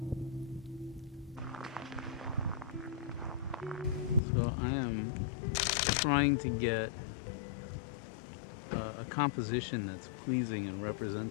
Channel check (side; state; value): right; drops out; at 4.2 s